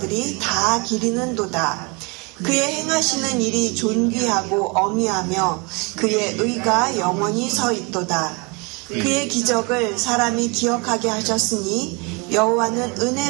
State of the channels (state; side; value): quieter; left; 29.9 dB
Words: 다 기리는도다. 그의 행하시는 일이 존귀하고 어미하며 그의 의가 영원히 서 있도다. 그의 기적을 사람이 기억하게 하셨으니 여호와는